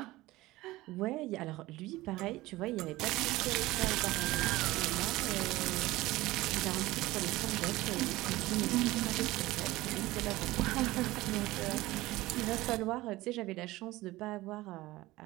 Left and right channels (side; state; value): left; quieter; 18.4 dB